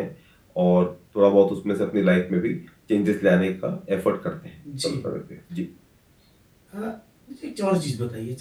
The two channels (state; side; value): identical; both; correlation 1.00